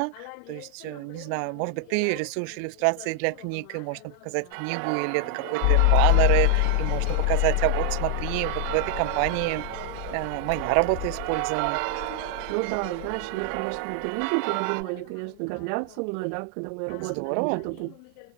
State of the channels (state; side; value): different; both; correlation 0.00